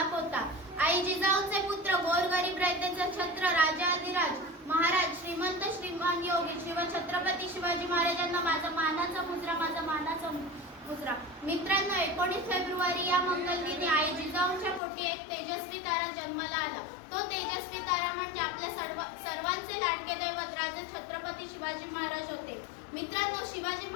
होता. आई जिजाऊंचे पुत्र गोरगरीब रयतेचे छत्र राजाधिराज महाराज श्रीमंत श्रीमान योगी छत्रपती शिवाजी महाराजांना माझा मानाचा मुजरा. मित्रांनो, 19 फेब्रुवारी या मंगलदिनी आई जिजाऊंच्या पोटी एक तेजस्वी तारा जन्माला आला. तो तेजस्वी तारा म्हणजे आपल्या सर्वांचे लाडके दैवत राजे छत्रपती शिवाजी महाराज होते. मित्रांनो, शिवाजी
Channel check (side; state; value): right; drops out; at 14.8 s